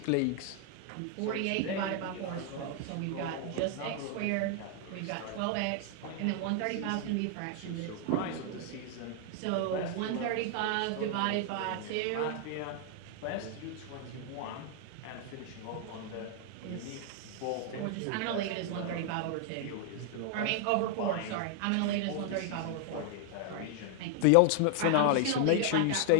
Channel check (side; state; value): both; different; correlation 0.00